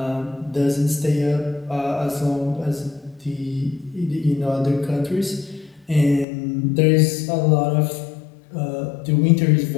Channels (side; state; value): right; drops out; at 6.2 s